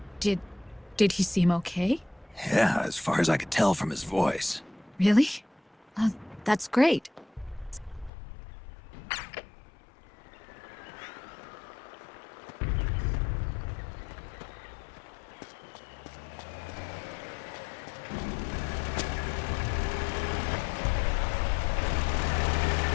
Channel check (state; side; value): drops out; right; at 8.1 s